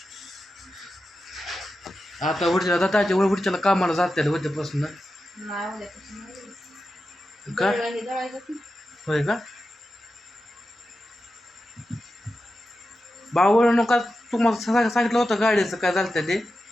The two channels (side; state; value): both; normal; correlation 0.91